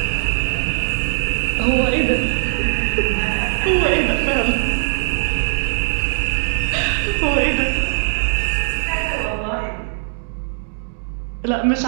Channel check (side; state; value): left; silent; digital silence